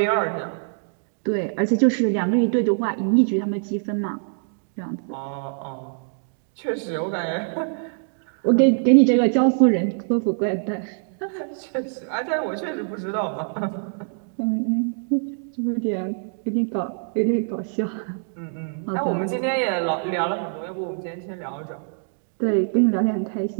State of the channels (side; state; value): left; silent; digital silence